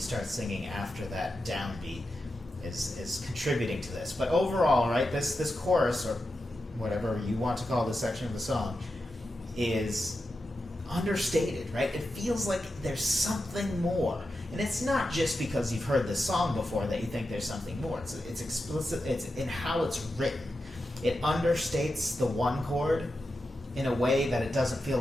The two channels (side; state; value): both; normal; correlation 0.90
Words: singing after that downbeat is contributing to this. But overall, right, this chorus, or whatever you want to call this section of the song, is understated, right? It feels like there's something more. And it's not just because you've heard this song before that you think there's something more. It's explicit, it's in how it's written. It understates the 1 chord in a way that it doesn't feel